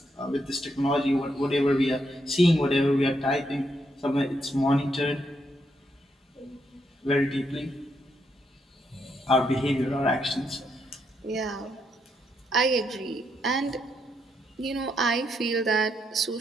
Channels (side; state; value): both; normal; correlation 0.78